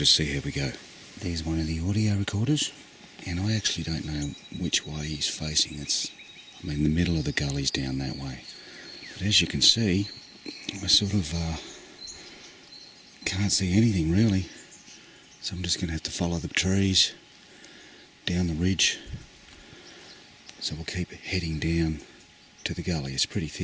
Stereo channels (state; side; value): identical; both; correlation 1.00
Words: see how we go. There's one of the audio recorders, and I actually don't know which way he's facing. The middle of the gully's down that way, but as you can see, I sort of can't see anything really, so I'm just going to have to follow the trees down the ridge. So we'll keep heading down to the gully. It's pretty